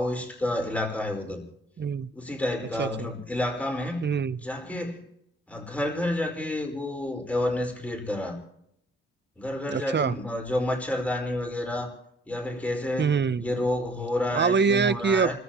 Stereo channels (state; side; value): normal; both; correlation 0.58